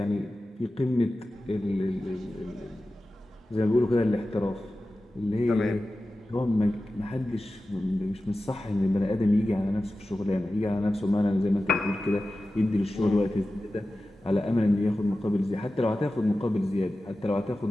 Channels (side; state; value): both; normal; correlation 0.94